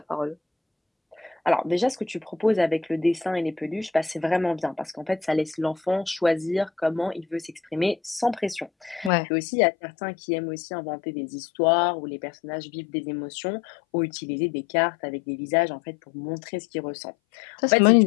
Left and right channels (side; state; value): right; drops out; at 9.1 s